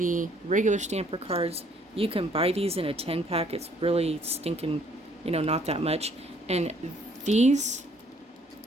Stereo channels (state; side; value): normal; both; correlation 0.62